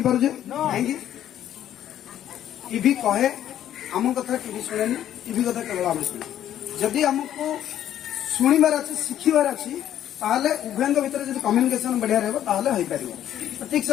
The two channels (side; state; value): right; quieter; 11.2 dB